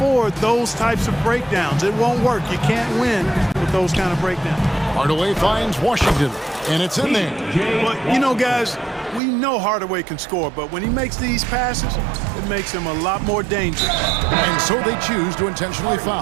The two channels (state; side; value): drops out; left; at 9.2 s